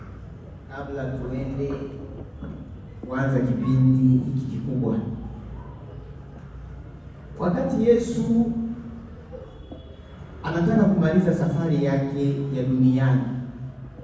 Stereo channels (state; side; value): identical; both; correlation 1.00